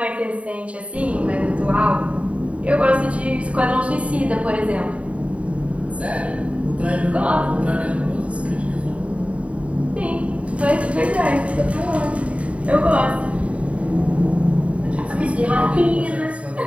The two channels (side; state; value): left; late; 0.065 ms